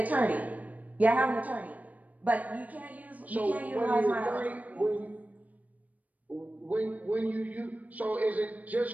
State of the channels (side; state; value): left; late; 0.074 ms